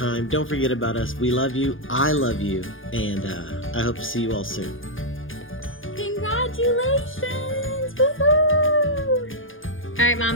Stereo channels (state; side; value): late; right; 0.58 ms